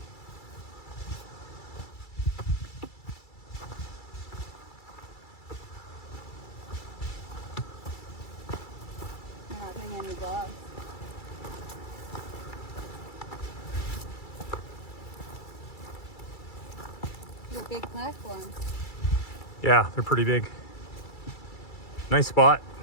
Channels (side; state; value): right; late; 2.3 ms